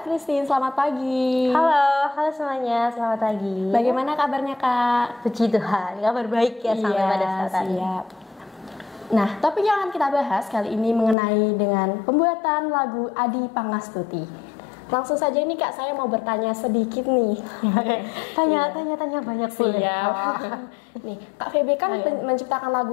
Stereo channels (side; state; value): right; drops out; at 11.2 s